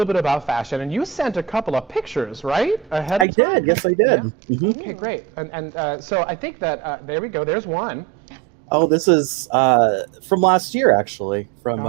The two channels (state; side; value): drops out; left; at 3.2 s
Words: bit about fashion. And you sent a couple of pictures, right? Ahead I of time? did. Yes, I did. Yeah. Mhm. Okay, great. And so I think that there we go. There's one. Oh, this is from last year, actually. From